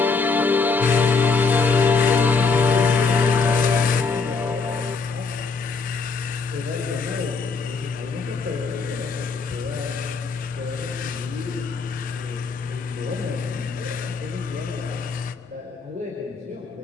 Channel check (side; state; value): right; quieter; 4.6 dB